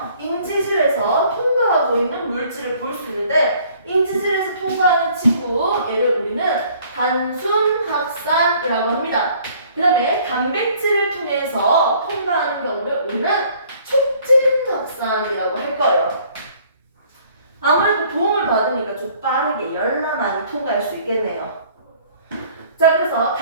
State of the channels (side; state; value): both; inverted; correlation -0.57